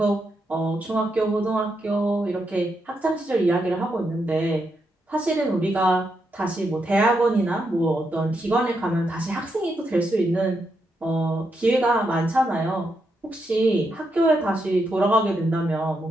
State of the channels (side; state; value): both; normal; correlation 0.82